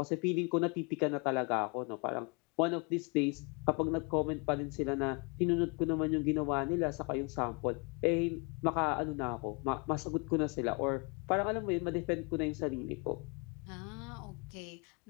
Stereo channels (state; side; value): quieter; right; 31.4 dB